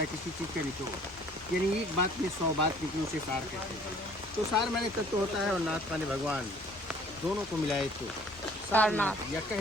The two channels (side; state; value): both; normal; correlation 0.55